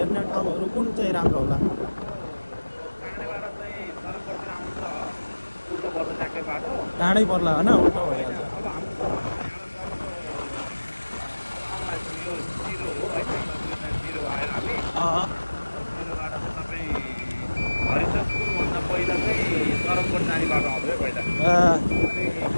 ठाउँहरू कुन चाहिँ राम्रो होला? टाढै पर्ला होइन, उल्टो भइहाल्छ।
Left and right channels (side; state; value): both; inverted; correlation -1.00